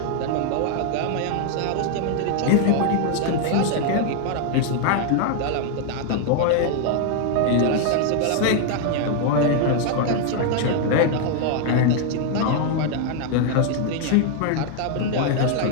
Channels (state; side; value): different; both; correlation 0.00